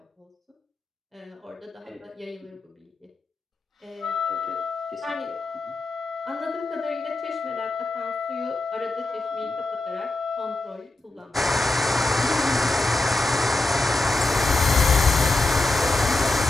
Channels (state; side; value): quieter; right; 3.0 dB